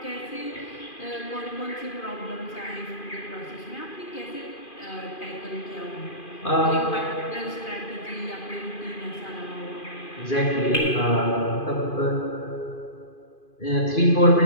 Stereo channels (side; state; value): right; late; 2.5 ms